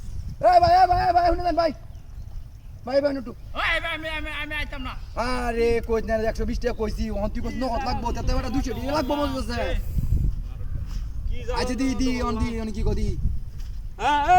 ভাই শুনে দেন ভাই নটু ওই ভাই আমি আইতাম না আরে কইছ না 120 টাকা কইছি ওহন তুই কইছ নত লাগবো তাতে বেটা 200 টাকা লাগবো বলতেছে কি যাও আচ্ছা দি অন কি কদি হ্যাঁ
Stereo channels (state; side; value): identical; both; correlation 1.00